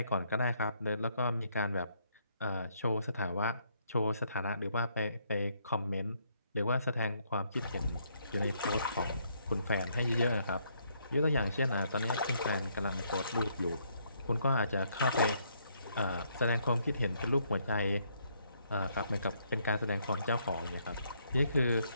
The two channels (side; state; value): both; inverted; correlation -0.71